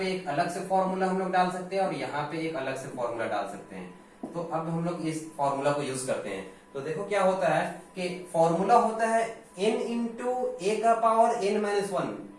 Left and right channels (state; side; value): identical; both; correlation 1.00